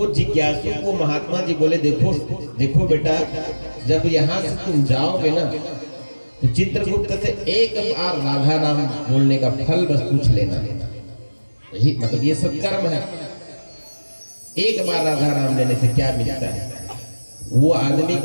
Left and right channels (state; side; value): inverted; both; correlation -1.00